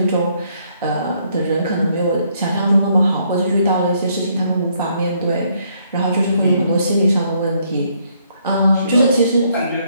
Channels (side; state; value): both; inverted; correlation -0.70